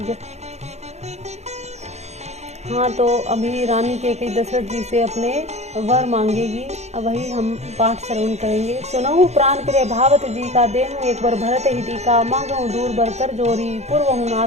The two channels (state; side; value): late; left; 0.32 ms